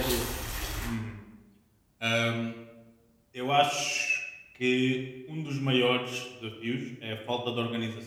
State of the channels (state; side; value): identical; both; correlation 1.00